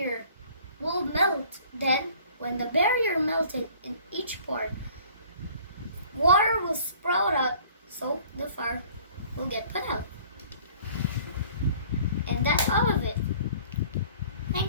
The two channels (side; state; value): both; inverted; correlation -0.52